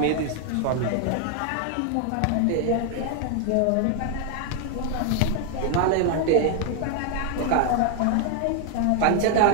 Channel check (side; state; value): both; different; correlation 0.00